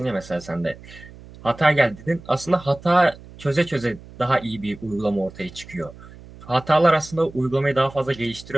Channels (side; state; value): right; noise; hum, 19 dB below the sound